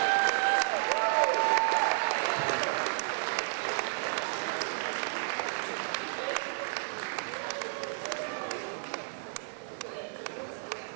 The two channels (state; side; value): silent; left; digital silence